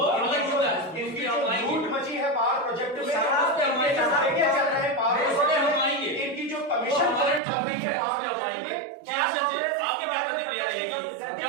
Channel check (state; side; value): drops out; left; at 7.4 s